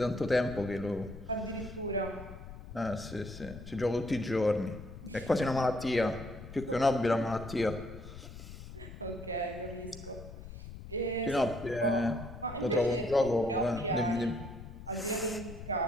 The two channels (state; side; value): noise; left; rumble, 13 dB below the sound